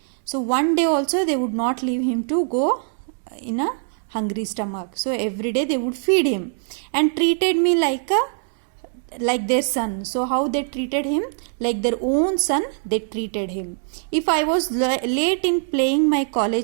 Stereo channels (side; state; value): left; silent; digital silence